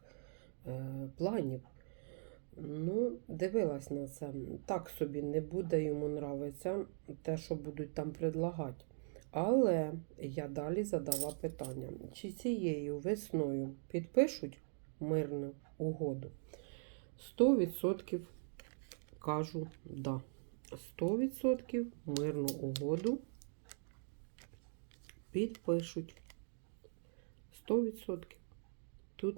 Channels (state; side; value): silent; left; digital silence